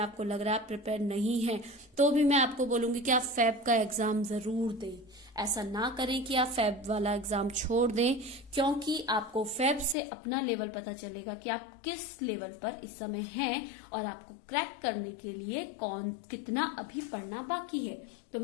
लग रहा है आप प्रिपेयर नहीं है, तो भी मैं आपको बोलूंगी कि आप फैब का एग्जाम जरूर दें। ऐसा ना करें कि आप फैब वाला एग्जाम छोड़ दें, क्योंकि आपको फैब से अपना लेवल पता चलेगा कि आप किस लेवल पर इस समय हैं और आपको क्रैक करने के लिए कितना अभी पढ़ना बाकी है। तो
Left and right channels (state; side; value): drops out; right; at 10.0 s